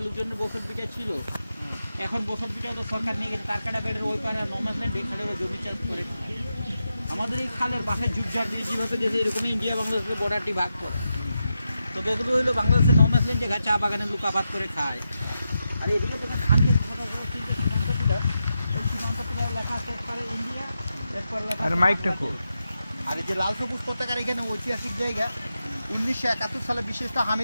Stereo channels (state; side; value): inverted; both; correlation -0.88